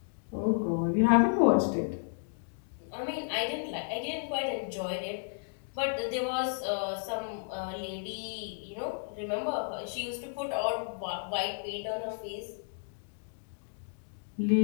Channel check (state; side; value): silent; right; digital silence